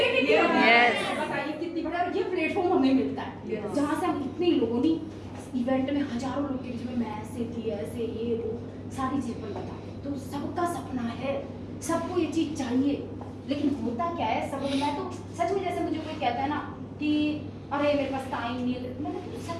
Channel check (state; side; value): identical; both; correlation 1.00